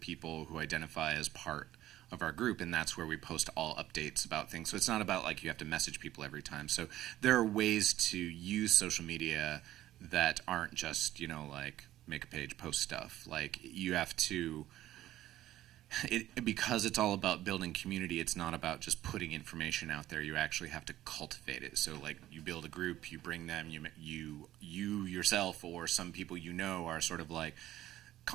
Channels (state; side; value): quieter; left; 14.0 dB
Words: who identify as part of our group, and that's where we post all updates about things. So it's not about like you have to message people every time. So there are ways to use social media that aren't just, like make a page, post stuff. Like you have to, because it's all about building community, it's not about just putting information out there. You actually have to cultivate it. So like you build a group, you bring them, you yourself or some people are sort of like